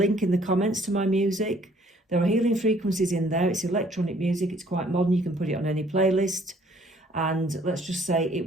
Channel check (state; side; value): normal; both; correlation 0.60